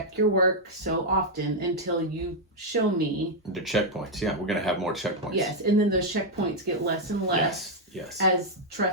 your work so often until you show me. The checkpoints, we're going to have more checkpoints. Yes, and then those checkpoints get less and less. Yes. As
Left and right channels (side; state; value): both; normal; correlation -0.02